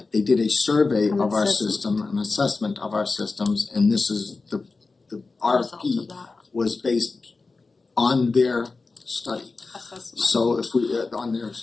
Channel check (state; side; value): quieter; right; 3.9 dB